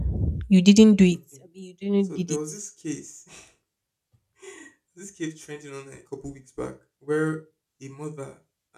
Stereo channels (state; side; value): identical; both; correlation 1.00